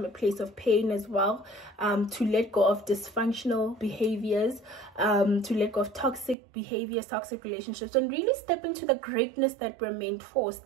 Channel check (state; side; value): drops out; left; at 6.4 s